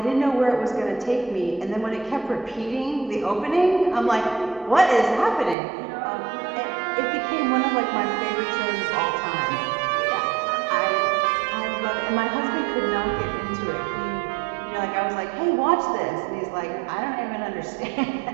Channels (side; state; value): left; drops out; at 5.6 s